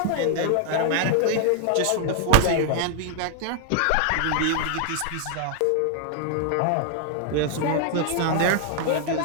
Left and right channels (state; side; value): different; both; correlation 0.00